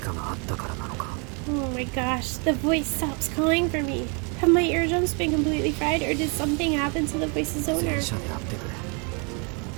があったからなのか。Oh my gosh, the voice stops calling for me. Have my eardrums been completely fried, or did something happen to the voice's owner? 戦車であってくれ。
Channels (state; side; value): quieter; left; 34.8 dB